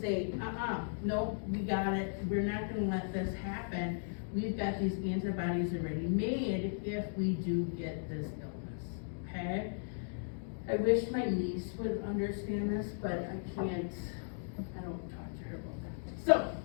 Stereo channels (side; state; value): right; silent; digital silence